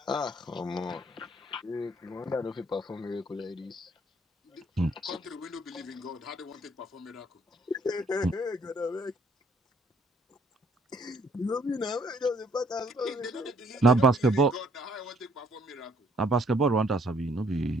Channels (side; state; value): both; normal; correlation 0.64